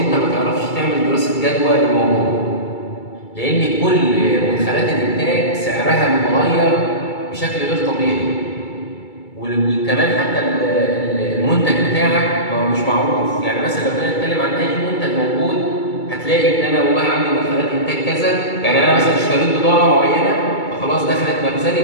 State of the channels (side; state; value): right; late; 2.3 ms